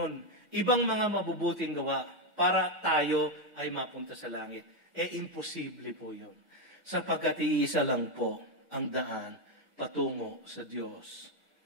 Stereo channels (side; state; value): both; normal; correlation 0.05